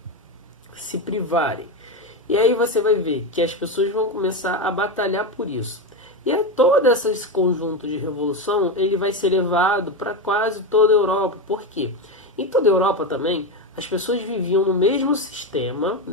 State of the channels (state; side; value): normal; both; correlation 0.14